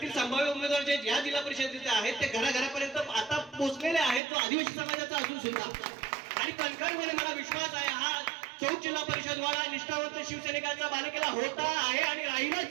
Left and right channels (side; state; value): left; drops out; at 4.2 s